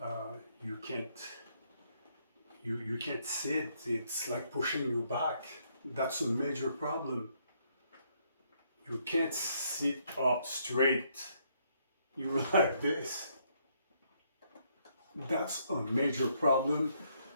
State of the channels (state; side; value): inverted; both; correlation -0.71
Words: You can't sit. It's like pushing you back. That's a major problem. You can't sit up straight. You're like this. That's a major problem.